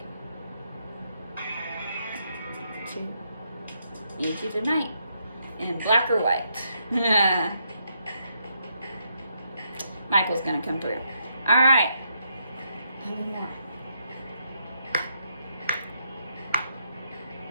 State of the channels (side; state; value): both; inverted; correlation -0.78